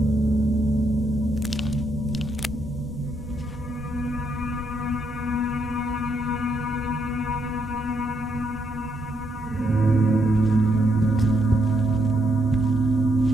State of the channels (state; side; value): normal; both; correlation 0.77